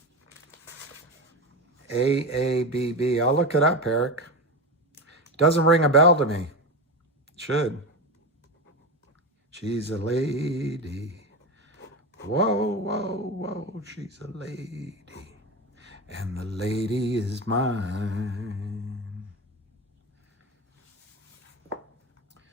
I'll look it up, Eric. Doesn't ring a bell to me. It should. She's a lady. Whoa, whoa, whoa, she's a lady. And the lady is mine.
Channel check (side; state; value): both; normal; correlation 0.20